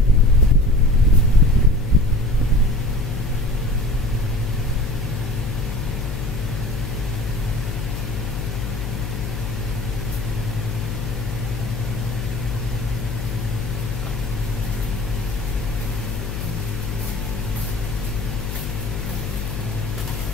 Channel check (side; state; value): left; noise; hum, 4 dB below the sound